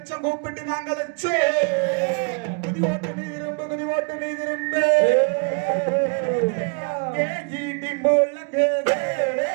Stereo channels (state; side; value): quieter; left; 37.7 dB